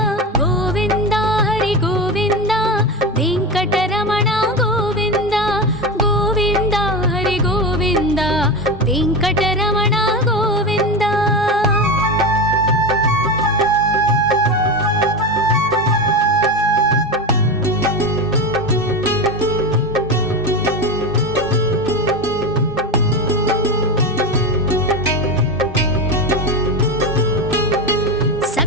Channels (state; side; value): normal; both; correlation 0.20